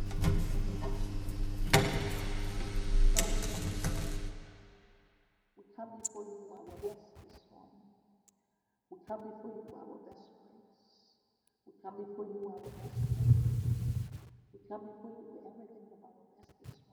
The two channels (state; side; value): identical; both; correlation 1.00